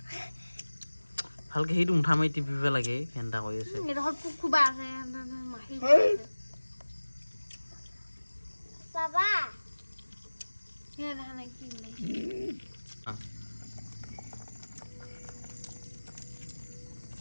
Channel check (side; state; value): both; inverted; correlation -1.00